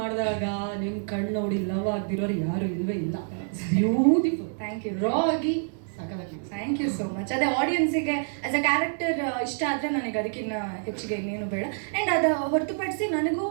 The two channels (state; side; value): silent; left; digital silence